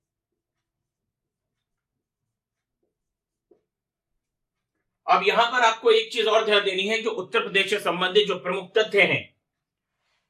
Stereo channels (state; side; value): identical; both; correlation 1.00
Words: अब यहां पर आपको एक चीज और ध्यान देनी है, जो उत्तर प्रदेश से संबंधित जो प्रमुख तथ्य हैं।